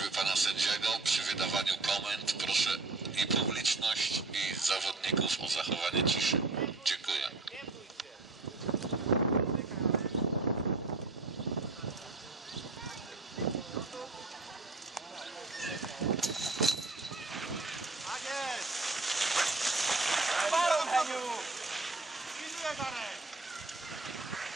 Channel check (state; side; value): quieter; left; 3.4 dB